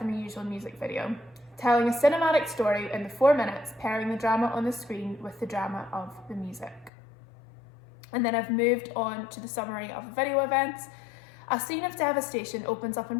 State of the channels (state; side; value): drops out; right; at 6.9 s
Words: a usual music video, telling a cinematic story in the 4 minutes, pairing the drama on the screen with the drama of the music. And then I've moved on to the summary of the video events. A scene of devastation opens up in